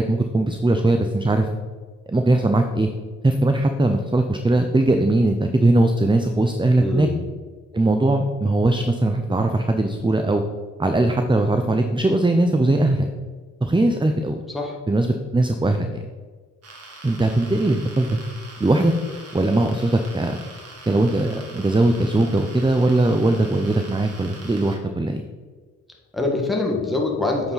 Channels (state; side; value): normal; both; correlation 0.85